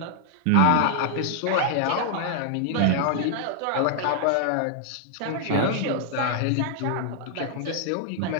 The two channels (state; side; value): different; both; correlation -0.01